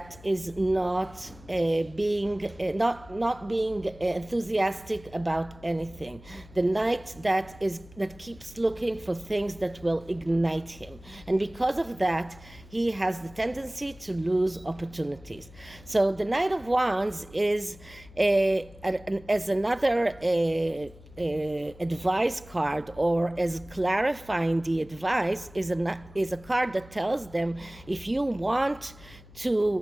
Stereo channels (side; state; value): left; noise; hum, 21 dB below the sound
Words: is not being enthusiastic about anything. The knight that keeps looking for things that will ignite him. And because of that, he has the tendency to lose opportunities. So the Knight of Wands is as another advice card, or as clarifying the advice, is a card that tells them if you want